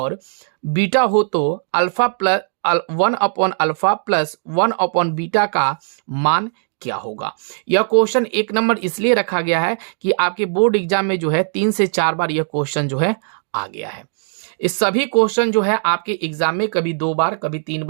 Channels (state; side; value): silent; left; digital silence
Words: बीटा हो तो अल्फा प्लस 1/अल्फा प्लस 1/बीटा का मान क्या होगा। यह क्वेश्चन 1 नंबर इसलिए रखा गया है कि आपके बोर्ड एग्जाम में जो है 3 से 4 बार यह क्वेश्चन जो है आ गया है। इस सभी क्वेश्चन जो है आपके एग्जाम में कभी 2 बार, कभी 3